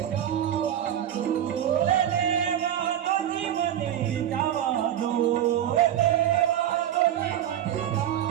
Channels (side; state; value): left; quieter; 11.0 dB